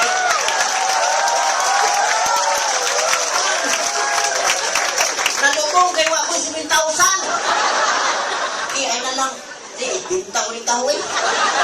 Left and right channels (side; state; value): both; identical; correlation 1.00